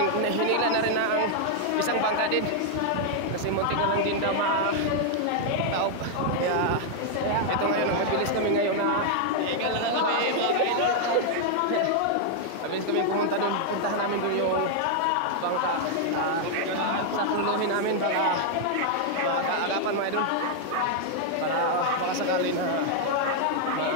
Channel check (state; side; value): different; both; correlation 0.00